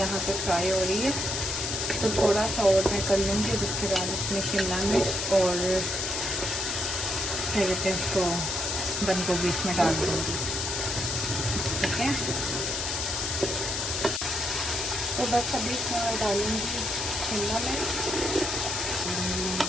पे फ्राई हो रही है, तो थोड़ा सा और मैं कर लूँगी। उसके बाद इसमें शिमला मिर्च और क्या कहते हैं उसको बंद गोभी इसमें डाल दूँगी, ठीक है। तो बस अभी इसमें मैं डालूँगी शिमला मिर्च,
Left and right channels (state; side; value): noise; left; hiss, 1 dB below the sound